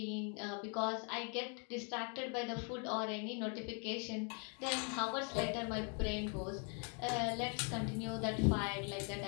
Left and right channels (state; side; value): quieter; right; 38.4 dB